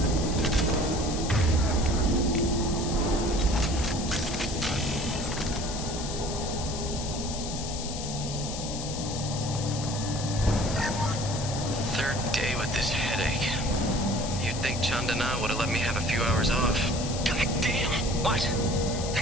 Third day with this headache. You'd think Chandana would have let me have a few hours off. God damn! What?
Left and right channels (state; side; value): noise; left; hiss, 8 dB below the sound